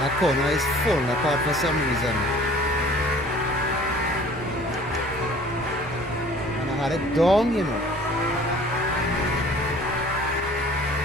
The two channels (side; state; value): both; normal; correlation 0.50